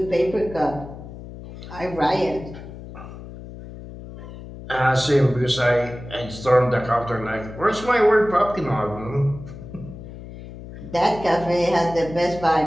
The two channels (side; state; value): left; noise; hum, 13 dB below the sound